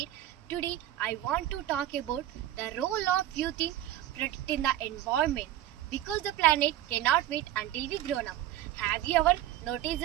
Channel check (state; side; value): quieter; left; 13.5 dB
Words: Today, I want to talk about the role of youth in protecting the environment because the planet cannot wait until we grown up. Have you ever